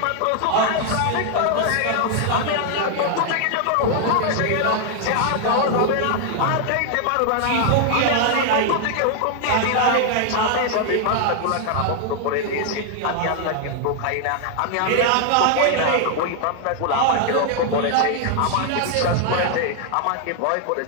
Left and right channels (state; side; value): different; both; correlation 0.00